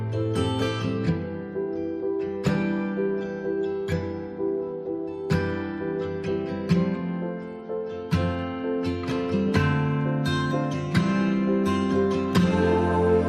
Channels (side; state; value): both; identical; correlation 1.00